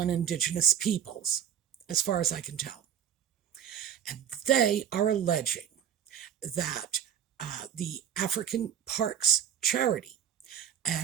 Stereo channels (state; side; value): quieter; left; 9.3 dB